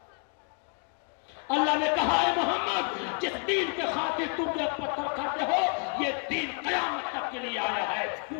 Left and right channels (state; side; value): quieter; right; 39.5 dB